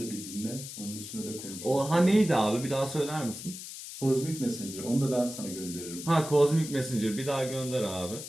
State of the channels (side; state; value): left; noise; hiss, 10 dB below the sound